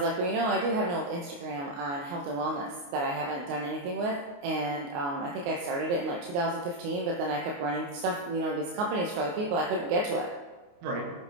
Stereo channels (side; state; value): left; late; 29 ms